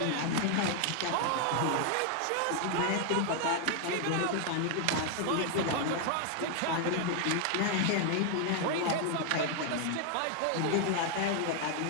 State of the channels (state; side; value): different; both; correlation 0.00